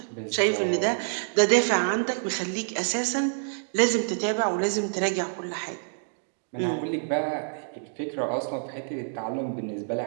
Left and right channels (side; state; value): left; silent; digital silence